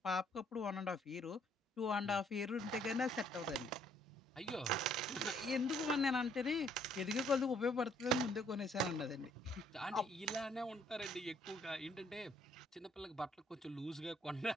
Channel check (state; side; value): normal; both; correlation 0.65